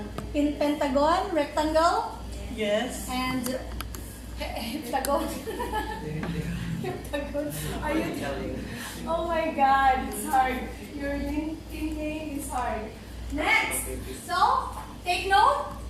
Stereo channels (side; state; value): both; identical; correlation 1.00